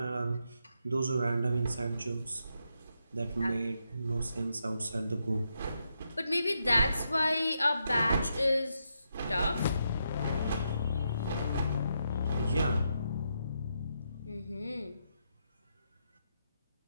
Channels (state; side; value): inverted; both; correlation -0.82